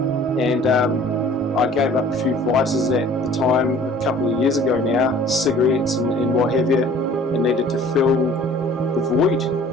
I gave up a few vices at the time, a couple of years ago now, cigarettes and what have you, and needed to fill the void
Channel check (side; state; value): both; normal; correlation 0.51